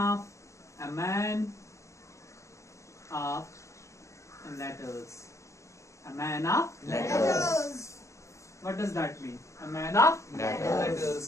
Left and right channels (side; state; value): right; late; 0.15 ms